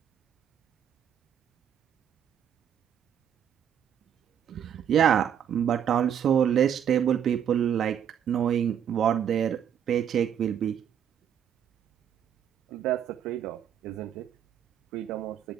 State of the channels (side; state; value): left; quieter; 9.1 dB